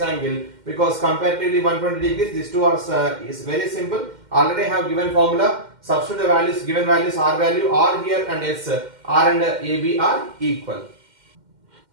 angle, because comparatively 120 degrees, these two are is very simple. Already have given formula. Substitute the values, given values, R value, R here and S, R and AB are equal.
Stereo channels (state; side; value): late; left; 2.1 ms